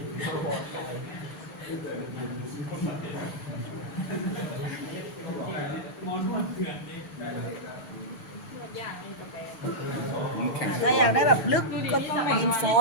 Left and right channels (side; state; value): right; late; 6.5 ms